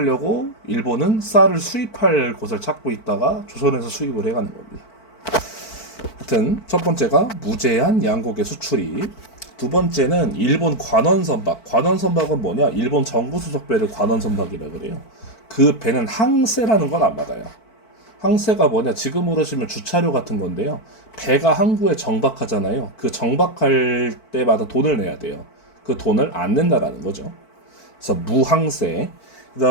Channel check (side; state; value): right; late; 4.5 ms